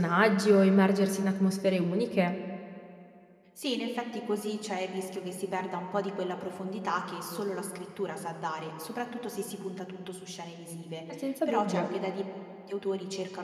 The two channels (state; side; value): identical; both; correlation 1.00